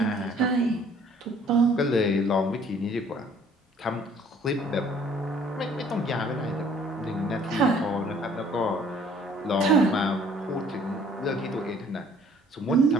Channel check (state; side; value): normal; both; correlation 0.57